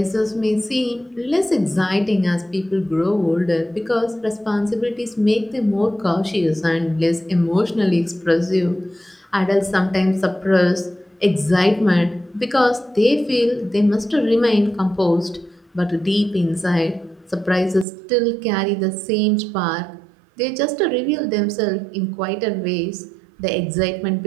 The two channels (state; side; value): drops out; left; at 17.9 s